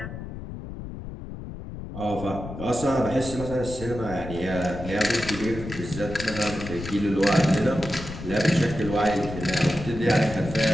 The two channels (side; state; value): left; noise; rumble, 10 dB below the sound